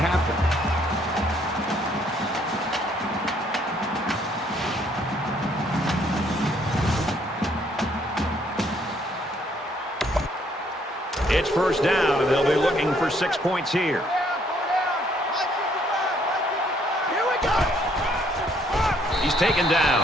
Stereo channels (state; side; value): normal; both; correlation 0.67